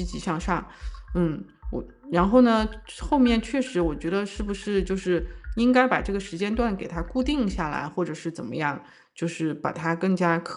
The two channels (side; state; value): both; identical; correlation 1.00